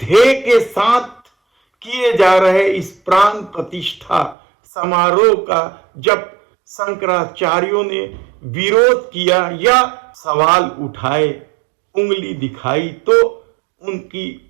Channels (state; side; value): drops out; left; at 4.4 s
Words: के साथ किए जा रहे इस प्राण प्रतिष्ठा समारोह का जब शंकराचार्यों ने विरोध किया या सवाल उठाए, उंगली दिखाई, तो उनकी